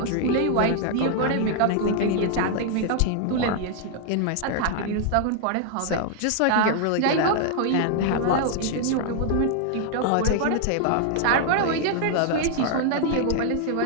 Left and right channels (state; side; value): different; both; correlation 0.00